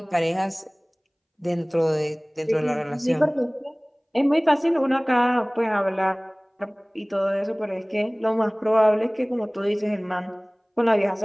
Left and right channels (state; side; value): identical; both; correlation 1.00